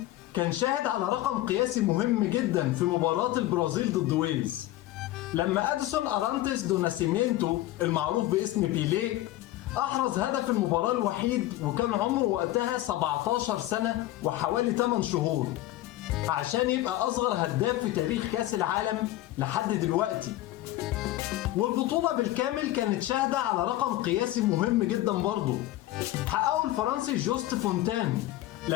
كان شاهد على رقم قياسي مهم جدا في مباراة البرازيل ضد ويلز، لما أديسون أرانتيس دو ناسيمينتو المعروف باسم بيليه أحرز هدف المباراة الوحيد، وكان عمره وقتها 17 سنة وحوالي 8 شهور، عشان يبقى أصغر هداف في تاريخ كأس العالم لحد دلوقتي. والبطولة بالكامل كانت شاهدة على رقم قياسي مهم جدا برضه حققه الفرنسي جوست فونتان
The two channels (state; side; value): quieter; right; 15.7 dB